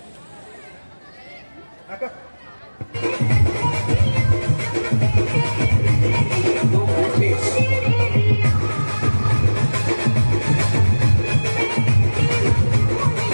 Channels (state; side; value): inverted; both; correlation -1.00